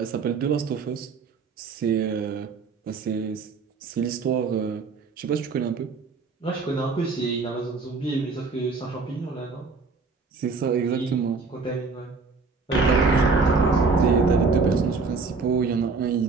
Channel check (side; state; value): left; quieter; 4.5 dB